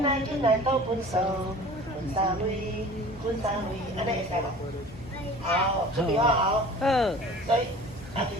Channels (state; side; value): normal; both; correlation 0.43